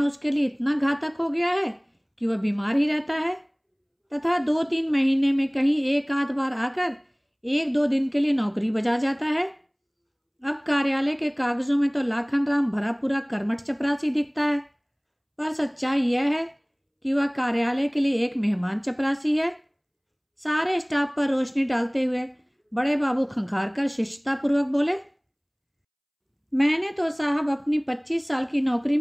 उसके लिए इतना घातक हो गया है कि वह बीमार ही रहता है तथा 2-3 महीने में कहीं एक आध बार आकर 1-2 दिन के लिए नौकरी बजा जाता है। अब कार्यालय के कागजों में तो लाखन राम भरा पूरा कर्मठ चपरासी दिखता है, पर सच्चाई यह है कि वह कार्यालय के लिए एक मेहमान चपरासी है। सारे स्टाफ पर रोशनी डालते हुए बड़े बाबू खंखार कर शिष्टतापूर्वक बोले, मैंने तो साहब अपनी 25 साल की नौकरी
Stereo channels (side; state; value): both; identical; correlation 1.00